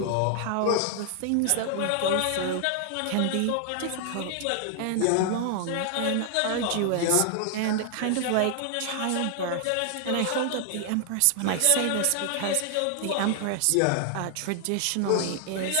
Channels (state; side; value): different; both; correlation 0.00